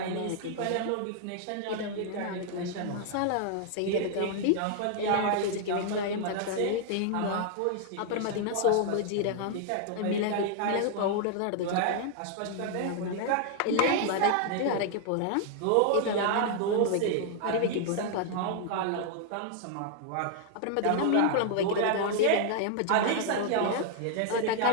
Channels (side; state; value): both; different; correlation -0.01